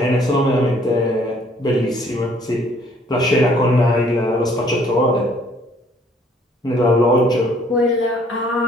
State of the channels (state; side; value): normal; both; correlation 0.61